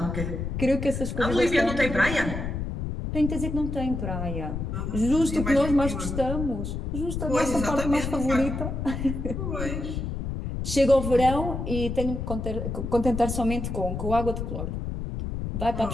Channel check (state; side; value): noise; left; rumble, 4 dB below the sound